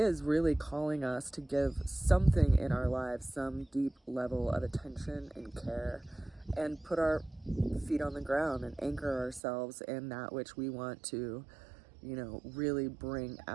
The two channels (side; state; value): left; drops out; at 9.4 s